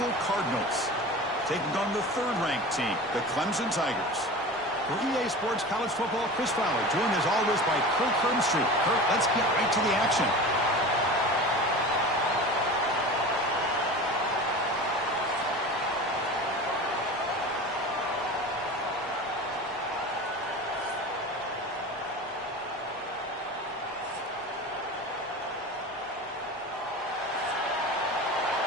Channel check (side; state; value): both; normal; correlation 0.33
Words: Cardinals, taking on the third-ranked team, the Clemson Tigers. For EA Sports College Football, Chris Fowler, joined as always by Kirk Herbstreit. Kirk, let's get right to the action.